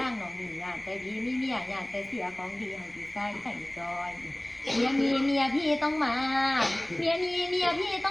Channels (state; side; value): noise; left; rumble, 26 dB below the sound